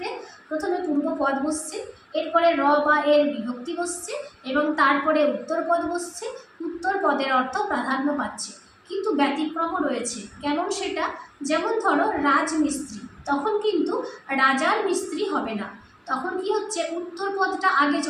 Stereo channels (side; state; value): both; identical; correlation 1.00